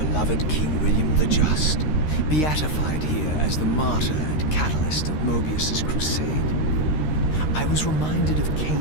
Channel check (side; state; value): right; late; 13 ms